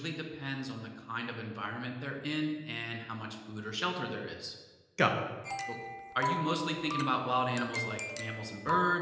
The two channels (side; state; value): both; identical; correlation 1.00